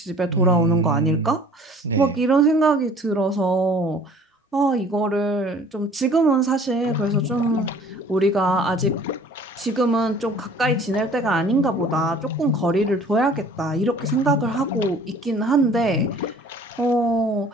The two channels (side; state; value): both; normal; correlation 0.51